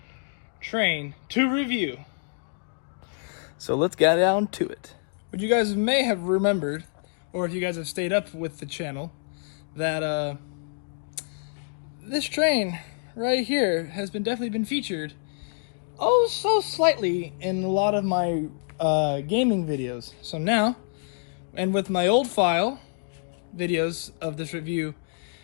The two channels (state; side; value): silent; right; digital silence